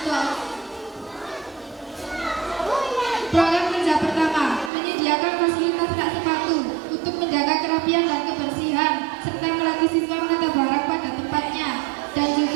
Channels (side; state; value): left; drops out; at 4.7 s